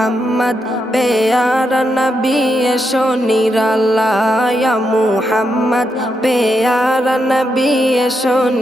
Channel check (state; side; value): normal; both; correlation 0.83